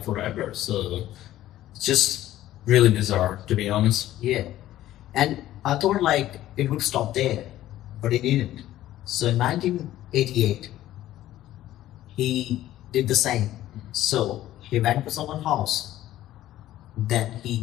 forever. So it's just really bizarre, to be honest. Yeah. And I thought like it would stop there, but it didn't. So in 1988, he did the same. So he went to someone's house, then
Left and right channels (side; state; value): right; quieter; 13.9 dB